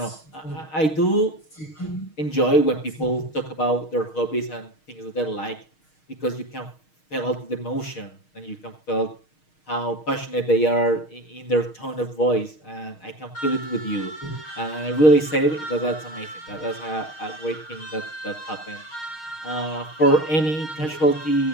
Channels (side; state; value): right; late; 6.4 ms